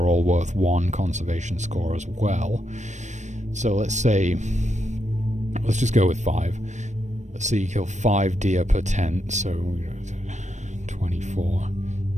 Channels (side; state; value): left; late; 0.34 ms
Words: all worth 1 conservation score as well. So let's say... Let's just go with 5. Let's say you kill 5 deer per tent, so 24...